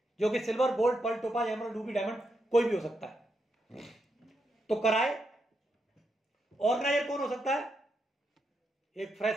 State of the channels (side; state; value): both; normal; correlation 0.83